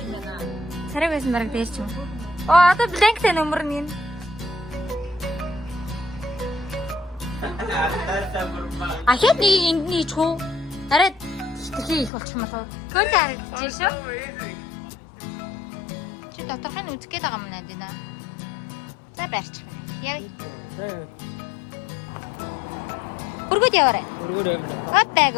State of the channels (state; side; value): drops out; right; at 12.1 s